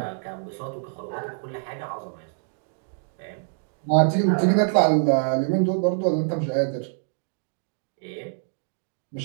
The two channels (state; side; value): silent; left; digital silence